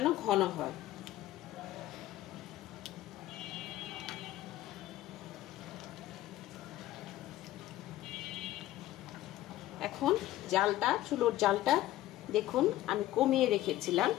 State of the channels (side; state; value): right; quieter; 14.8 dB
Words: ঘন হয়। এখন জালটা, চুলোর জালটা দেখুন আমি কমিয়ে রেখেছিলাম,